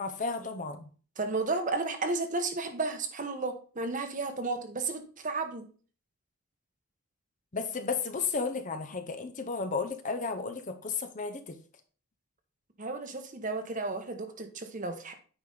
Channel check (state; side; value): normal; both; correlation -0.04